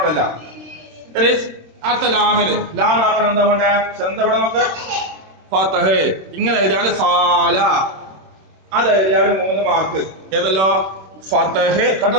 ഇനി അടുത്ത ലാമിന് ലാമാക്കണം എന്താ വേണ്ടേ എന്താ ഇവിടെ നോക്ക് ഫതഹ് ഇങ്ങനെ എഴുതിയാല് സാല അത് എഴുതിയാല് 3 മാർക്ക് ഏതല്ലോ ഫതഹ്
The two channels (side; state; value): left; late; 26 ms